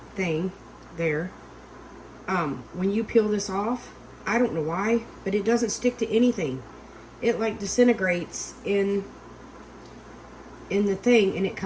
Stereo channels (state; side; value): identical; both; correlation 1.00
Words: thing there. When you peel this off, I don't know why, but it doesn't stick to anything. It like disintegrates in the thing, and it